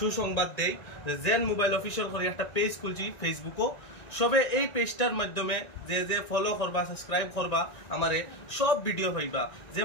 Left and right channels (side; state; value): right; late; 2.0 ms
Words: দেই যে জেন মোবাইল অফিশিয়াল করে একটা পেজ খুলছি ফেসবুকও সবে এই পেজটার মাধ্যমে যে ফলো করবা সাবস্ক্রাইব করবা আমারে সব ভিডিও পাইবা যে